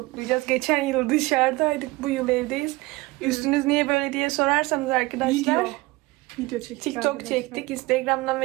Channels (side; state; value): left; quieter; 21.6 dB